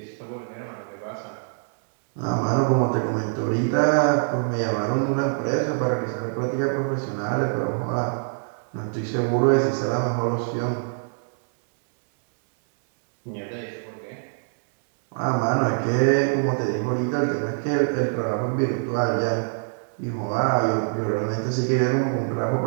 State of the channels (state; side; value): silent; left; digital silence